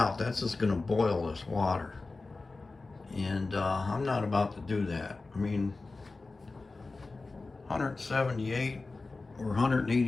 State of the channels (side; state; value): right; quieter; 3.6 dB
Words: that's just gonna boil this water. And I'm not about to do that. I mean, 178 or